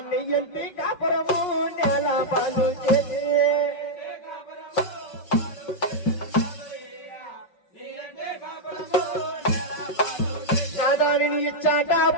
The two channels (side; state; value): right; late; 5.3 ms